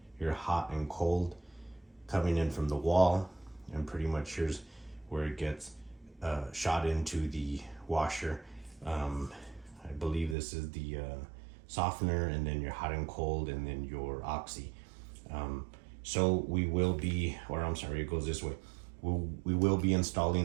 hot and cold coming in from the wall, and pretty much here's where it gets shot into the washer. I believe this is the softener, and then your hot and cold, and then your oxy. So we will be, or I'm sorry, it goes this way. We will be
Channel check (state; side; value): drops out; left; at 10.4 s